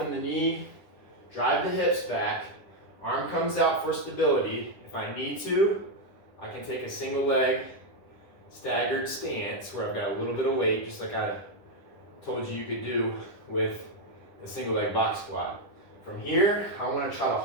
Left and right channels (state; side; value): late; right; 10 ms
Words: the knee, drive the hips back, arm comes out for stability. If I need to, I can take a single leg staggered stance where I've got a little bit of weight, just like I told you could do with the single leg box squat. From here, I want to try to